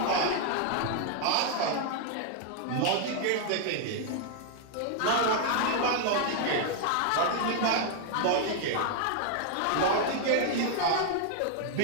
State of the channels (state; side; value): different; both; correlation 0.00